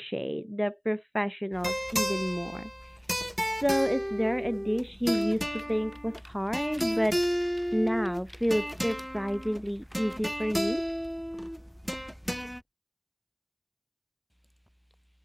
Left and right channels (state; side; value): identical; both; correlation 1.00